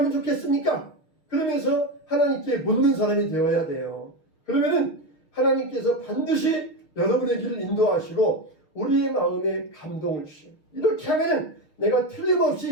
좋겠습니까? 그러면서 하나님께 묻는 사람이 되어야 돼요. 그러면은 하나님께서 반드시 여러분의 길을 인도하시고 우리의 마음에 감동을 주셔요. 이렇게 하면 내가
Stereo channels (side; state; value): right; late; 6.4 ms